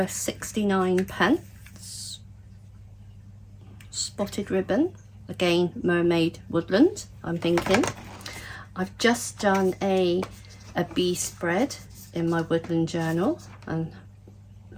69 pence. spotted ribbon, again mermaid woodland. I'm thinking I've just done a bee spread in my woodland journal, and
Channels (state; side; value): identical; both; correlation 1.00